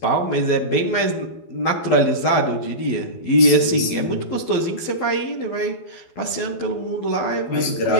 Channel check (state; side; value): late; right; 12 ms